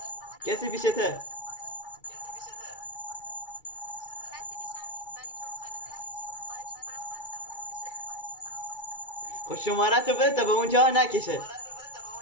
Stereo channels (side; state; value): right; late; 2.3 ms